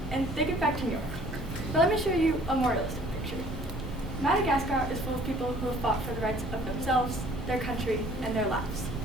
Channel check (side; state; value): both; normal; correlation 0.54